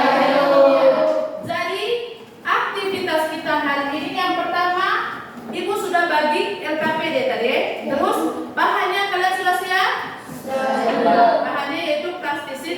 Jadi aktivitas kita hari ini yang pertama, Ibu sudah bagi LKPD tadi. Terus bahannya kalian sudah siap? Bahannya yaitu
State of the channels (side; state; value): both; identical; correlation 1.00